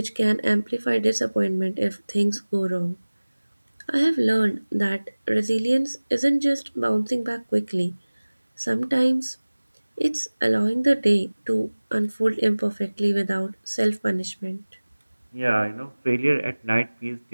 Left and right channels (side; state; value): both; inverted; correlation -1.00